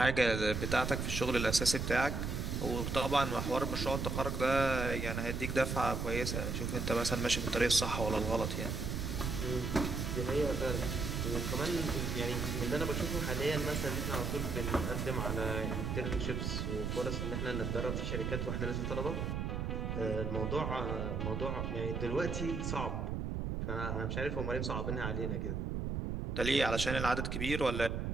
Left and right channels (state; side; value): noise; right; rumble, 2 dB below the sound